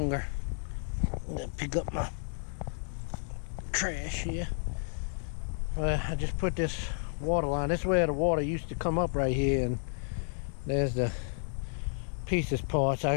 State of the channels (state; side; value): silent; right; digital silence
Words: I'm gonna pick up my trash here. I just put this water line. This is where the water used to come up right here, and there's the pieces parts.